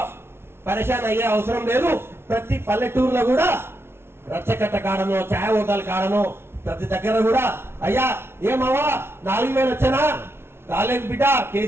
పరేషాన్ అయ్యే అవసరం లేదు. ప్రతి పల్లెటూరులో కూడా రచ్చకట్ట కాడనో ఛాయ్ హోటల్ కాడనో ప్రతి దగ్గర కూడా అయ్యా ఏమవ్వా 4,000 వచ్చానా రాలేదు బిడ్డ,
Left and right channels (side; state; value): left; late; 0.12 ms